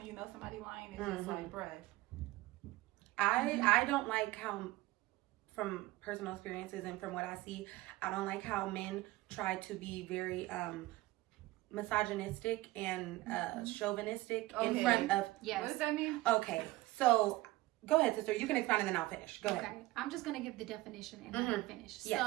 you know somebody lying, it's just like, bruh. I don't like how, from personal experiences and from what I see, I don't like how men try to be very misogynistic and chauvinistic in front of. Yes. What does that mean? Okay, so go ahead, sister. You can expound and then I'll finish. Go ahead. Okay, I'm just gonna give the definition and then finish. Yes.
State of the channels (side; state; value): left; quieter; 18.8 dB